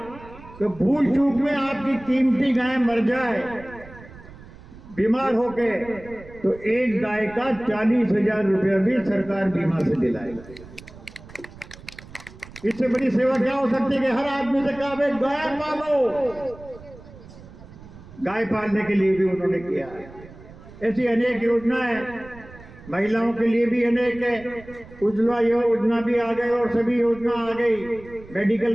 कि भूल चूक में आपकी कीमती गाय मर जाए बीमार होके तो एक गाय का 40,000 रुपया भी सरकार बीमा से दिलाएगी। इससे बड़ी सेवा क्या हो सकती है कि हर आदमी से कहा भाई गाय पालो। गाय पालने के लिए भी उन्होंने किया है। ऐसी अनेक योजनाएं महिलाओं के लिए भी अनेक है। उज्ज्वला योजना भी आ गई और सभी योजना आ गई,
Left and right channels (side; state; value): right; noise; rumble, 19 dB below the sound